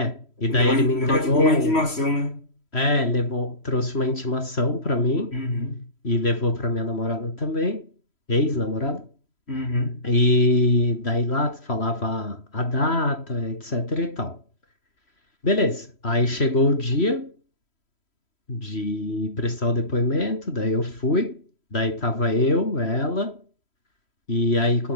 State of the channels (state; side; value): late; right; 3.1 ms